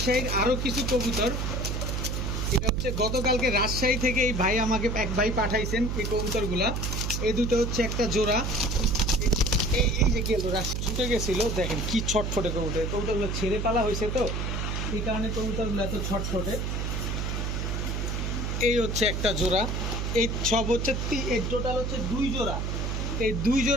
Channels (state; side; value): noise; right; hum, 1 dB below the sound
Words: আরও কিছু কবুতর। এটা হচ্ছে গতকালকে রাজশাহী থেকে এই ভাই আমাকে এক ভাই পাঠাইছেন এই কবুতরগুলা। এই দুটো হচ্ছে একটা জোড়া। এই যে গেল ছুটে গেছিল, দেখেন কি ছটফটে কবুতর। কবুতরগুলো ছেড়ে পালা হয়েছে, তো এই কারণে কবুতরগুলো এত ছটফটে। এই হচ্ছে একটা জোড়া। এই সব হচ্ছে এই টোটাল হচ্ছে 2 জোড়া। এই 2